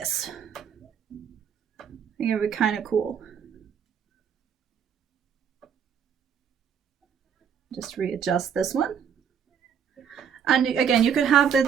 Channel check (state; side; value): quieter; left; 7.7 dB